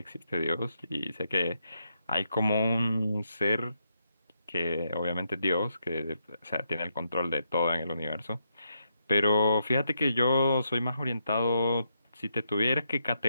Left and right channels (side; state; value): both; inverted; correlation -0.80